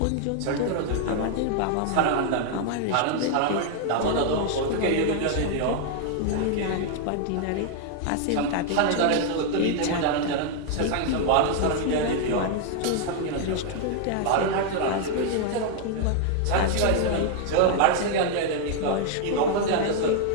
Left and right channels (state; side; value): different; both; correlation 0.00